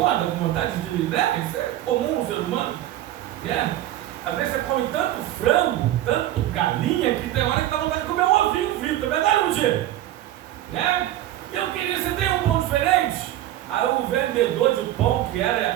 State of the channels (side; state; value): left; quieter; 13.6 dB